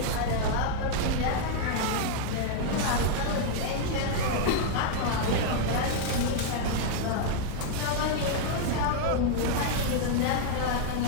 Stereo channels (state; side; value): different; both; correlation 0.00